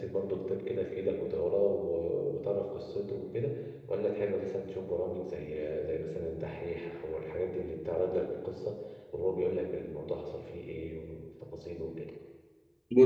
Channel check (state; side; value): identical; both; correlation 1.00